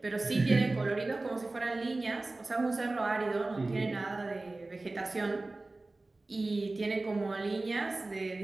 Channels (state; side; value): quieter; left; 3.1 dB